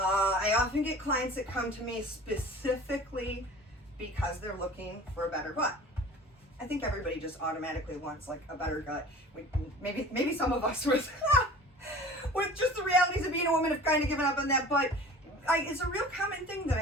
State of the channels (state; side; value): normal; both; correlation 0.42